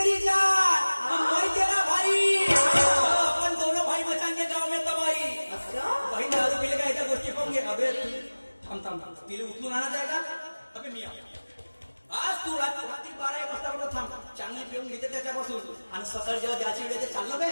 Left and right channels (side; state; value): both; inverted; correlation -1.00